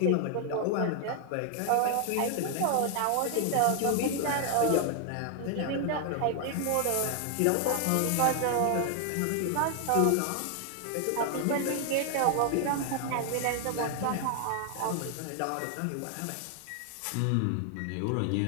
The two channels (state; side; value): different; both; correlation 0.00